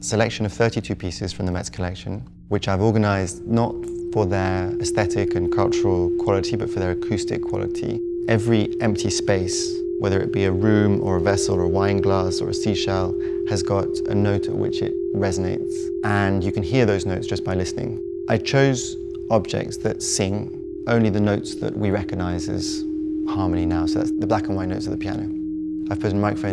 of 32 pieces from the Met's collection, which I've organised not for their aesthetic and cultural quality, but for their acoustic quality. Every empty space, whether it be a room or a vessel or a wine glass or a seashell, has got a note at which it resonates, and you can hear those notes just by listening. I chose objects that sing only the notes that we recognise as harmony now, so that's the black and white notes of the piano. I've put a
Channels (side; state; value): both; identical; correlation 1.00